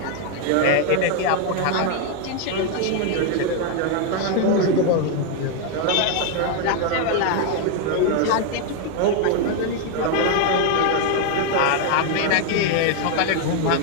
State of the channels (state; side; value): different; both; correlation 0.01